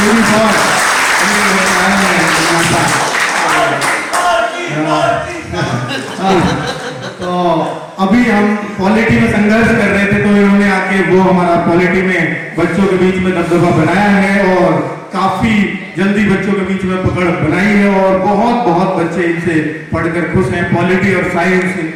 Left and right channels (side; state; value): both; identical; correlation 1.00